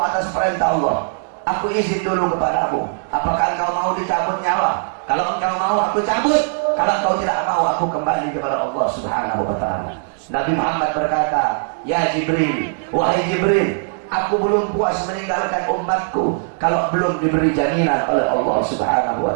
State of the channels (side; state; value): left; silent; digital silence